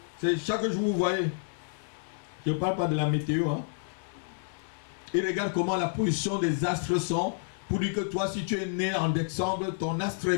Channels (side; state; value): right; silent; digital silence